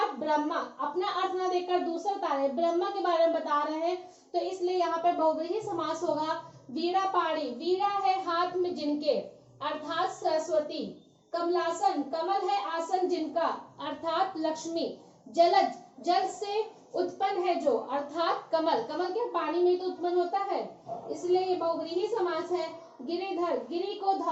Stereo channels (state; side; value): identical; both; correlation 1.00